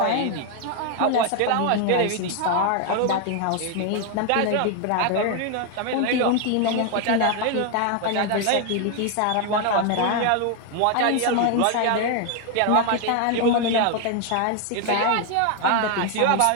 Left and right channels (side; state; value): both; different; correlation 0.01